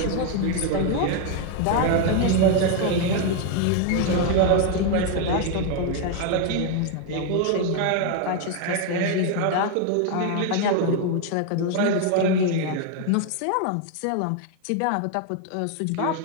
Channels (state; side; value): different; both; correlation 0.01